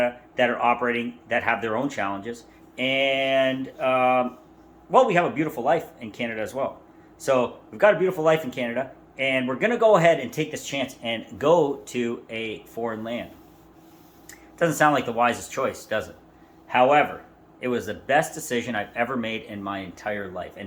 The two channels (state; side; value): identical; both; correlation 1.00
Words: that are operating, that have their own challenges. And, we have a beautiful life in Canada as well. So we've got a beautiful life in Canada, and we're going to go ahead and take this chance and go to a foreign land. Doesn't sound like the wisest choice, does it? However, it was the best decision I've ever made in my entire life.